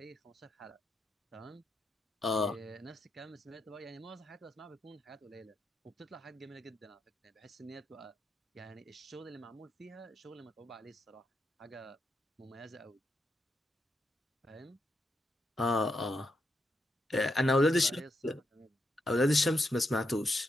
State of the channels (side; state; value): both; normal; correlation 0.83